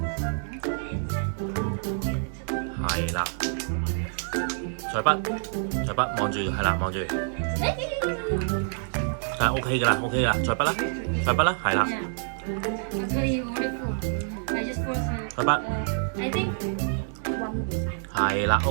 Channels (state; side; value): silent; left; 60 dB below the other